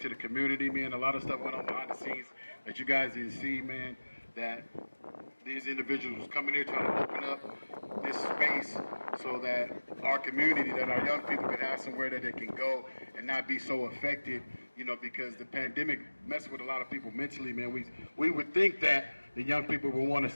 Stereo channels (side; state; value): both; inverted; correlation -1.00